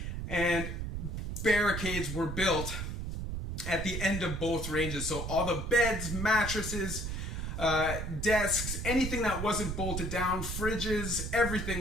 and barricades were built at the end of both ranges. So all the beds, mattresses, desks, anything that wasn't bolted down, fridges,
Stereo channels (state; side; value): noise; right; rumble, 4 dB below the sound